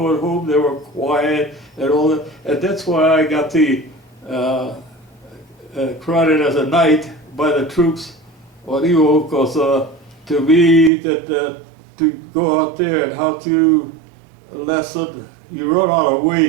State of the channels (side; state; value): left; drops out; at 10.9 s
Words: home they were quiet and all that, and that's why I got the crowded as a knight by the troops on Iwo, because to me that to go out there and how to lesson, you run out of